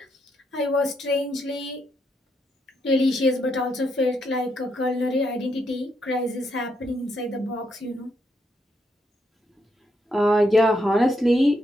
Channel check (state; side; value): normal; both; correlation 0.78